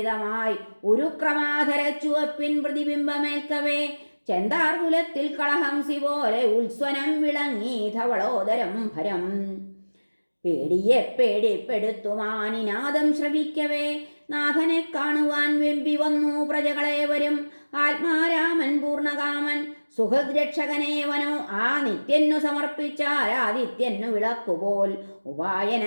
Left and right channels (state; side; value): inverted; both; correlation -1.00